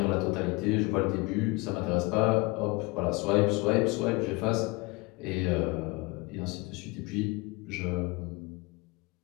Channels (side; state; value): right; quieter; 25.1 dB